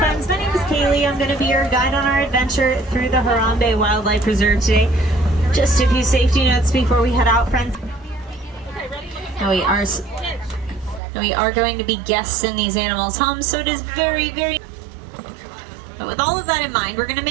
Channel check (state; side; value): drops out; left; at 11.0 s